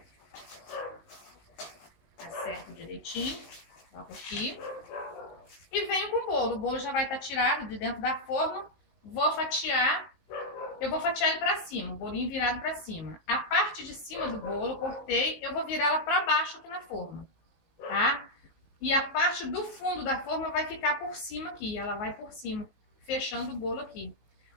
Acerto direitinho, coloco aqui. E venho com o bolo. O bolo já vai estar tirado de dentro da forma. Vou fatiar. Eu vou fatiar ele pra cima, o bolinho virado pra cima. A parte de cima do bolo, eu cortei, eu vou virar ela pra baixo aqui na forma, tá? E a parte do fundo da forma vai ficar por cima aqui, ela vai por cima, fechando o bolo aqui.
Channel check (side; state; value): right; late; 19 ms